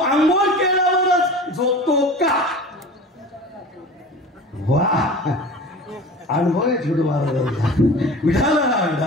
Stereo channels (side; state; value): both; normal; correlation 0.37